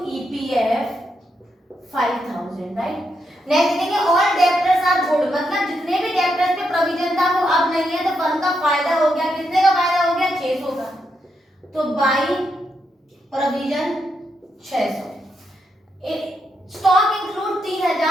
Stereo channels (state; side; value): normal; both; correlation 0.81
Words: ईपीएफ 5000, राइट। नेक्स्ट लिखेंगे ऑल डेब्टर्स आर गुड, मतलब जितने भी डेब्टर्स पे प्रोविजन था वो अब नहीं है, तो फर्म का फायदा हो गया, कितने का फायदा हो गया, 600 का, तो by provision 600। Stock include